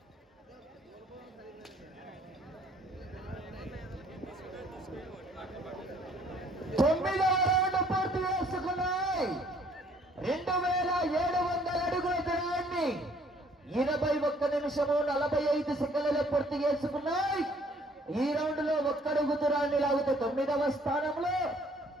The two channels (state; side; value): normal; both; correlation 0.60